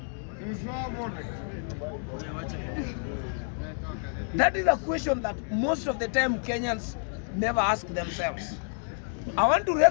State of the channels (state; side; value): silent; right; 59 dB below the other